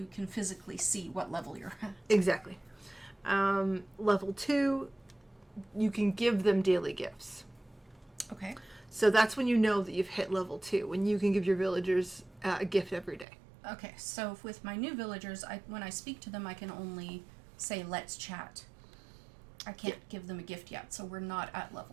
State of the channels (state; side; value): drops out; left; at 13.2 s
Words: can physically see what level you're at. Exactly. Level 2, you can give them daily gifts. Okay. So that's when you know that you've hit level 2, when you can give your villagers a gift every day. Okay, so with my new villagers, when I speak to them, I can only say, let's chat. I can't give them a gift yet, so we're not at